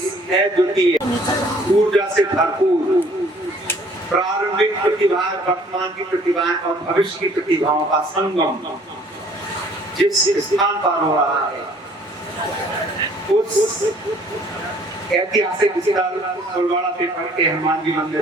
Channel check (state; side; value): normal; both; correlation 0.57